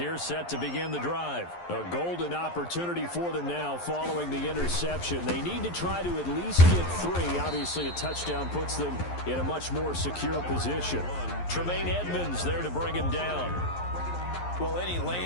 set to begin the drive. A golden opportunity for them now following the interception. They need to try to at least get 3. Obviously, a touchdown puts them in a much more secure position. Tremaine Edmonds there to bring him down. Well, any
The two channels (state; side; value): late; right; 11 ms